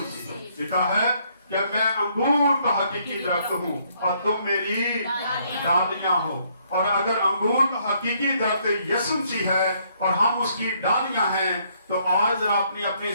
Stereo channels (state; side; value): inverted; both; correlation -0.69